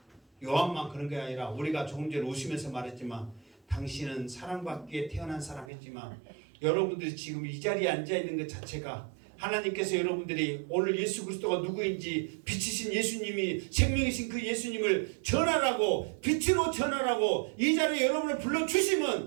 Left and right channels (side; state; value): left; drops out; at 5.7 s